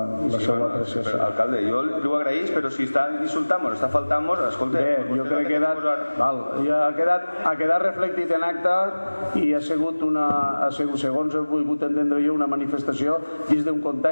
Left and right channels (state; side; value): inverted; both; correlation -1.00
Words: apreciació. Alcalde, jo li ho agraeix, però si està insultant-nos, està faltant-nos, escolta... Bé, jo crec que ha quedat reflectit en acte i ha sigut segons he volgut entendre jo, una manifestació dins d'un